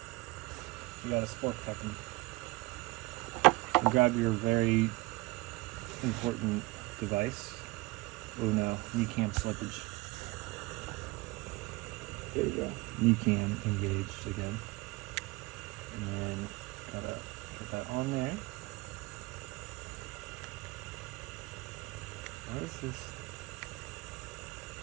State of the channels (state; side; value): quieter; left; 22.9 dB